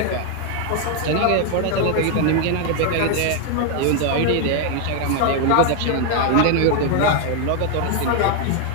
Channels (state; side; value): different; both; correlation 0.01